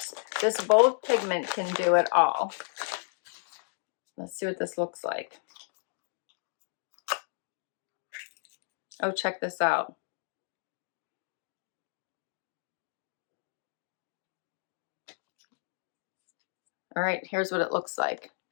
this bold pigment can do it all. Let's see what this looks like. Oh, check this out. All right, here's what it looks like.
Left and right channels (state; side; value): silent; right; digital silence